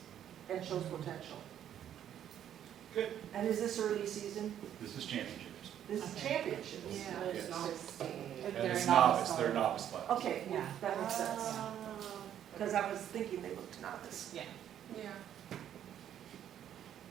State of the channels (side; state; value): left; quieter; 10.3 dB